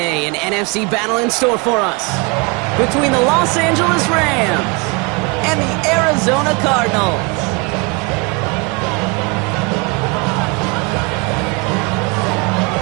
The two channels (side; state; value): left; quieter; 29.4 dB